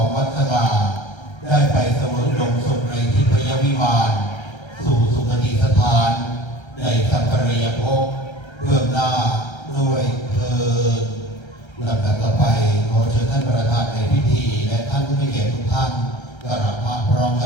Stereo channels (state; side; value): late; right; 1.3 ms